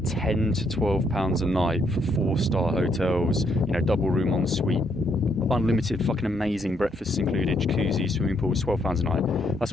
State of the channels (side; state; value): both; normal; correlation 0.73